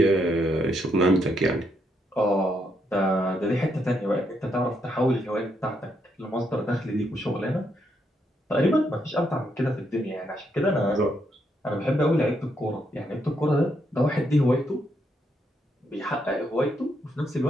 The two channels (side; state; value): both; normal; correlation 0.77